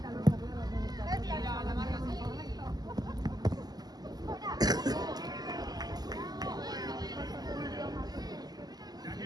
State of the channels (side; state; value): left; late; 0.19 ms